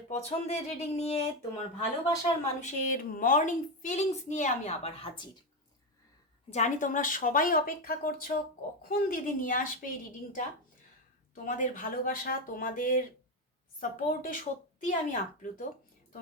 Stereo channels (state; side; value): normal; both; correlation 0.10